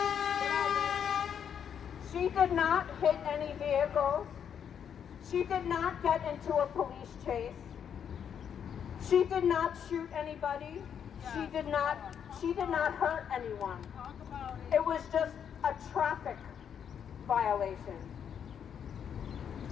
She did not hit any vehicles. She did not get into a police chase. She did not shoot anybody. She did not hurt anyone. It was just a traffic violation.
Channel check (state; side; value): quieter; right; 8.2 dB